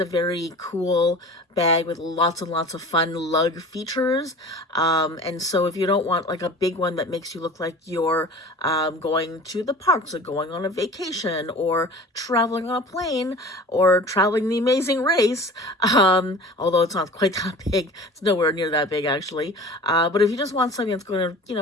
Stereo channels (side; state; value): both; normal; correlation 0.40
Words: very cool bag with lots and lots of fun lug features. And so if you don't want like a big one that makes you look like you're going to the parks or going on a vacation or traveling on a plane or traveling the Amazing Race, although it's not quite that big, it's nowhere near that big actually. But if you just want something that's going